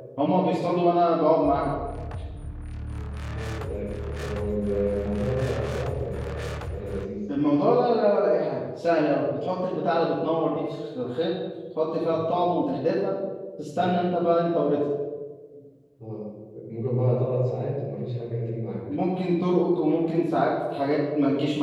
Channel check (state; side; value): identical; both; correlation 1.00